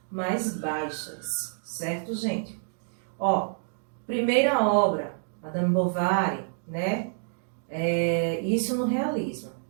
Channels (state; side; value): silent; left; digital silence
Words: mais baixas, certo, gente? Primeira obra, Madame Bovary, né? Isso no realismo.